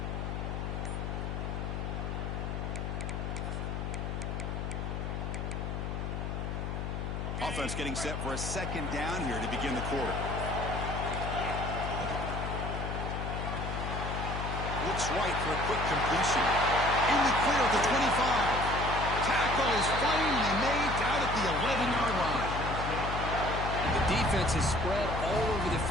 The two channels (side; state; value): left; noise; hum, 3 dB below the sound